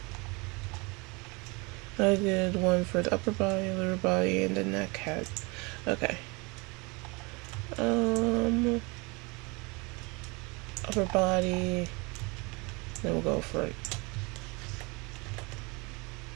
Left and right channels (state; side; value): quieter; left; 27.9 dB